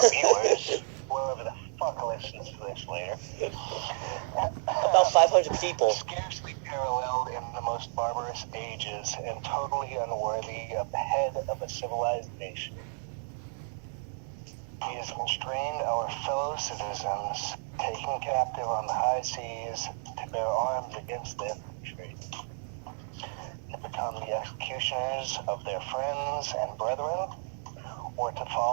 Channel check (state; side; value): silent; left; digital silence